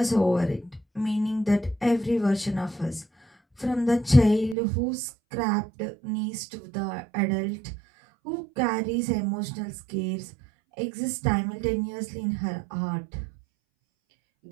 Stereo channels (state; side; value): drops out; left; at 4.5 s